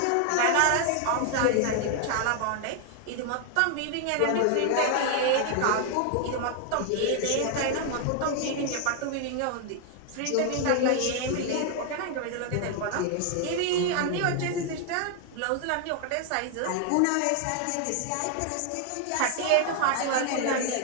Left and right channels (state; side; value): different; both; correlation 0.00